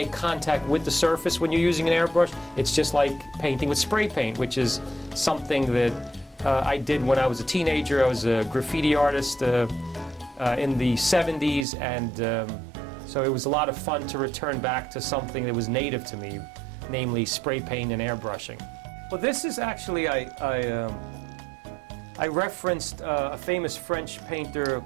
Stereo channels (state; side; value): drops out; left; at 11.7 s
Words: contact with the surface when you're using an airbrush. It's just like painting with spray paint, which is something that I did when I was a teenager. I was a graffiti artist in the 70s, and so it was a lot of fun to return back to something that was native to me, namely spray paint and airbrushing. Well, this is actually, I referenced a famous French painter